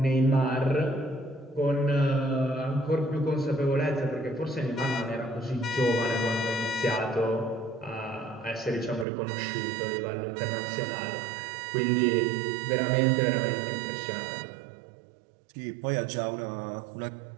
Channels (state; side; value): drops out; left; at 9.1 s